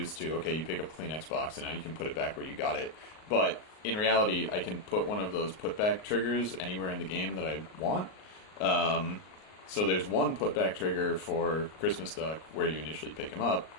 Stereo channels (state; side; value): late; right; 38 ms